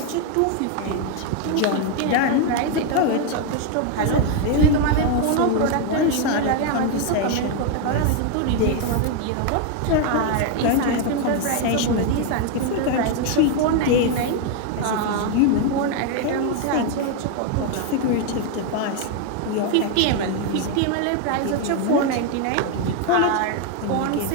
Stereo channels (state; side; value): different; both; correlation 0.01